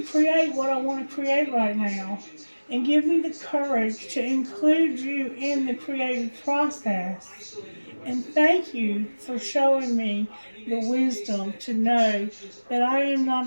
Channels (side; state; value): both; inverted; correlation -1.00